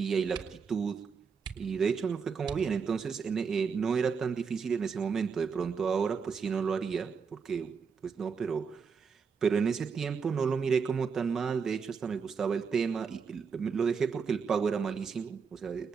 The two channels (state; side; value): quieter; left; 5.9 dB